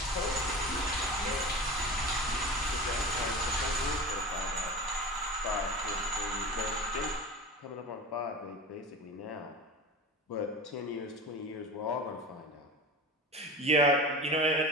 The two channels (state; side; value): normal; both; correlation 0.32